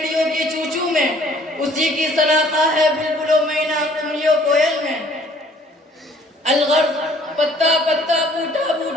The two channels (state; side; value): normal; both; correlation 0.58